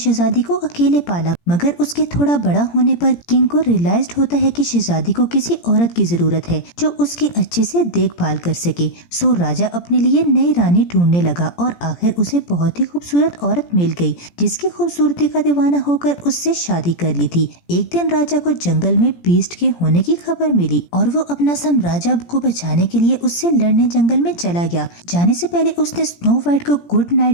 को अकेले पाला। मगर उसके थोड़ा बड़ा होने पर किंग को रियलाइज होता है कि शहजादी को किसी औरत की जरूरत है जो उसकी अच्छे से देखभाल कर सके। सो राजा अपने लिए नई रानी ढूंढने लगा और आखिर उसे बहुत ही खूबसूरत औरत मिल गई जिसकी खूबसूरती का दीवाना होकर उससे शादी कर ली थी। एक दिन राजा को जंगल में बीस्ट के होने की खबर मिली और वो अपना साम्राज्य को बचाने के लिए उससे लड़ने जंगल में चला गया। जाने से पहले उसने स्नो वाइट को गुड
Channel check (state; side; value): late; right; 17 ms